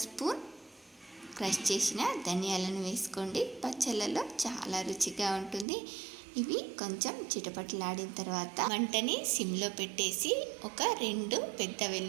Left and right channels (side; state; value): left; drops out; at 5.7 s